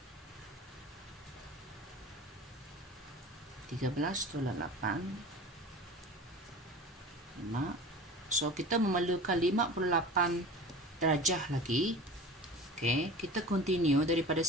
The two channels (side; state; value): both; normal; correlation 0.36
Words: 13 tolak 8 5. So kita memerlukan 58 darjah lagi. Okay, kita continue daripada